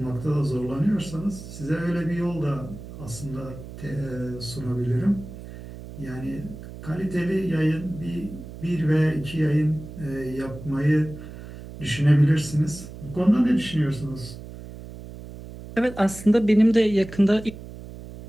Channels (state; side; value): noise; right; hum, 13 dB below the sound